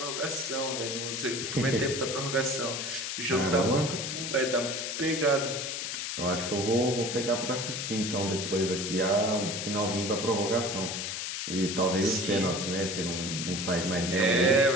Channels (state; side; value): noise; left; hiss, 4 dB below the sound